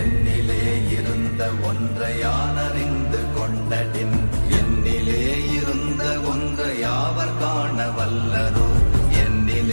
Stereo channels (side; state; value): both; inverted; correlation -1.00